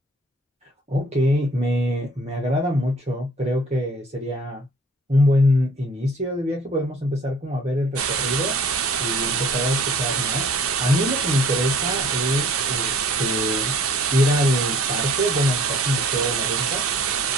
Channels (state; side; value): normal; both; correlation 0.52